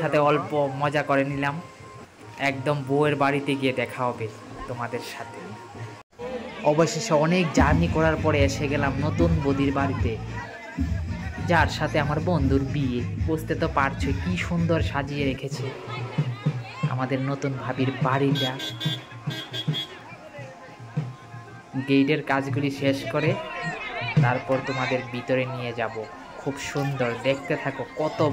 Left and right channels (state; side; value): identical; both; correlation 1.00